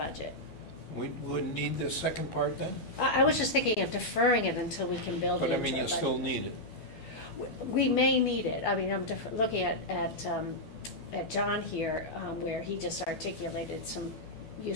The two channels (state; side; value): late; right; 12 ms